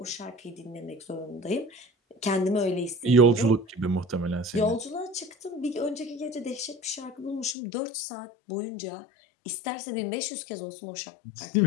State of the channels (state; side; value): drops out; right; at 7.6 s